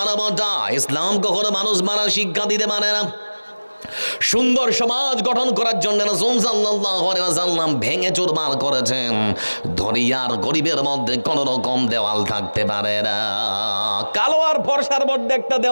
ইসলাম কখনো মানুষ মারার শিক্ষা দিতে পারে না। সুন্দর সমাজ গঠন করার জন্য রাসূল সাল্লাল্লাহু আলাইহি ওয়াসাল্লাম ভেঙে চুরমার করেছেন। ধনী আর গরিবের মধ্যে কোন রকম দেওয়াল থাকতে পারে না। কালো আর ফর্সার মধ্যে একটা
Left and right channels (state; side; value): inverted; both; correlation -1.00